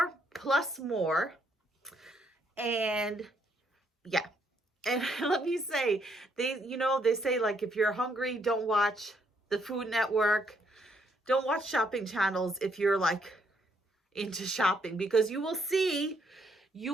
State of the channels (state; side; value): normal; both; correlation 0.72